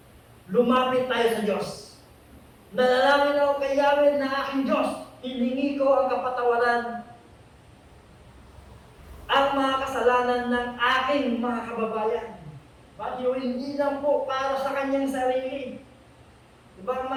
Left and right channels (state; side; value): identical; both; correlation 1.00